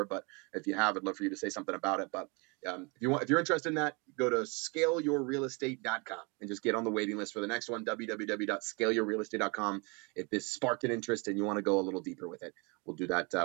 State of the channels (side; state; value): left; quieter; 30.7 dB